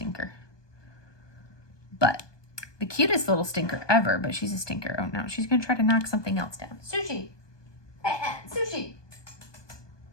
But the cutest little stinker ever, but she's a stinker. Oh no, she's gonna try to knock something else down. Sushi. Sushi.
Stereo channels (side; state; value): right; late; 1.2 ms